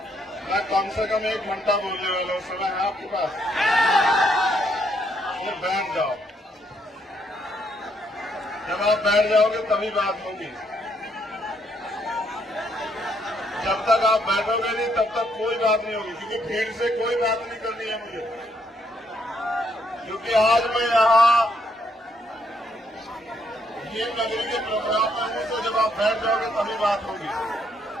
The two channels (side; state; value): both; normal; correlation 0.73